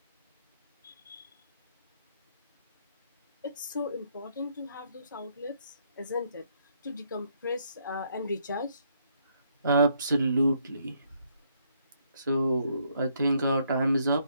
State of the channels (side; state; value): both; inverted; correlation -0.71